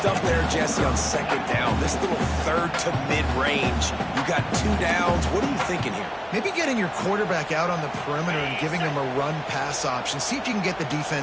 they're Jesse, on second down. This little third to mid-range. You got 2 downs. What are you thinking here? Maybe getting your quarterback out on the perimeter and giving him a run-pass option. See if you can get the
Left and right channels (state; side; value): identical; both; correlation 1.00